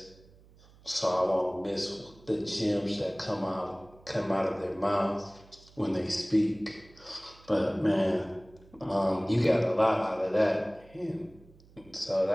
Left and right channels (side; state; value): right; noise; hum, 25 dB below the sound